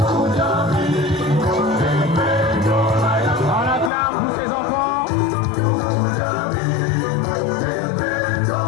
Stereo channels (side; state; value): right; drops out; at 3.9 s